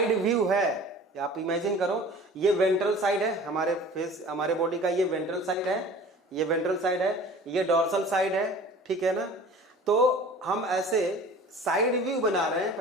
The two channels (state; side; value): normal; both; correlation 0.43